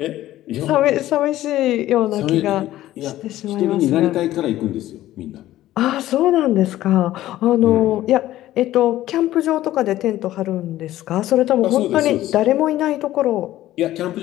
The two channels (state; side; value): quieter; right; 14.5 dB